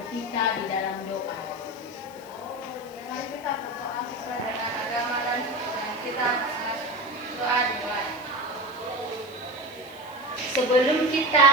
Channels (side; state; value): left; noise; hiss, 23 dB below the sound